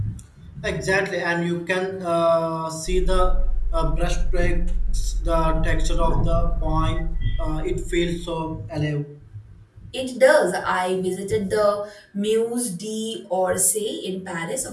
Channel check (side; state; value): both; identical; correlation 1.00